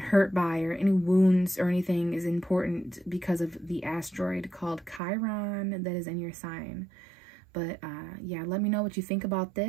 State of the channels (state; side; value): drops out; left; at 5.0 s